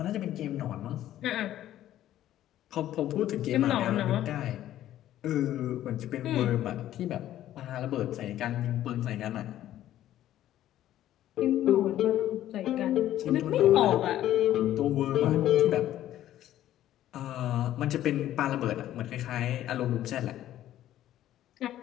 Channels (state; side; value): quieter; right; 12.8 dB